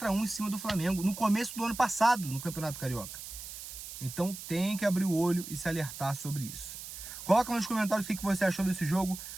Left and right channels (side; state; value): right; noise; hiss, 11 dB below the sound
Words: em cima do Flamengo, no começo do ano passado, no Campeonato Carioca. Então tem que abrir o olho e se alertar sobre isso. Coloca nos comentários o que você achou desse jogo